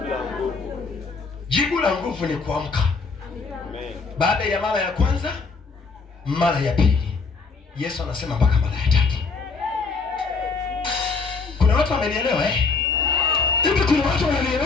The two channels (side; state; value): right; quieter; 4.5 dB